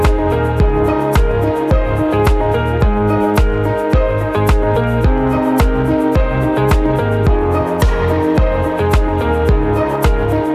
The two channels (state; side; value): identical; both; correlation 1.00